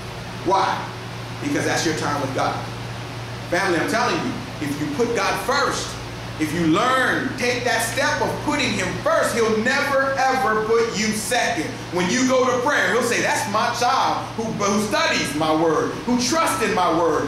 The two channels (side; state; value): both; identical; correlation 1.00